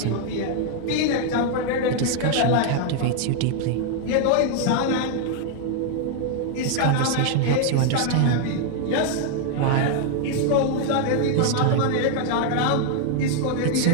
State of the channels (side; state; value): both; different; correlation 0.00